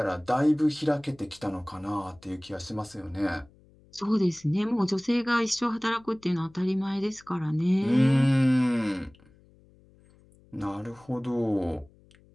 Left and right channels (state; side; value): noise; left; hum, 28 dB below the sound